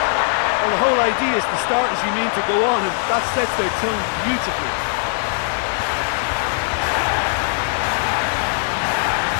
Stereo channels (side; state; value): right; silent; 64 dB below the other